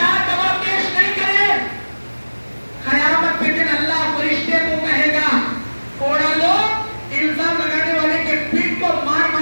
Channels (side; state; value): both; inverted; correlation -1.00